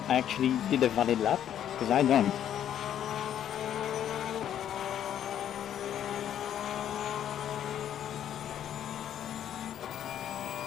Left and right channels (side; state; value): right; quieter; 10.3 dB